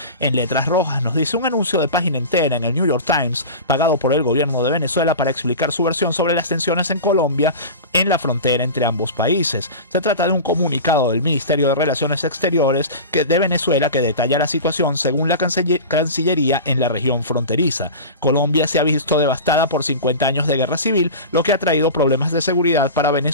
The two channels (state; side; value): inverted; both; correlation -0.30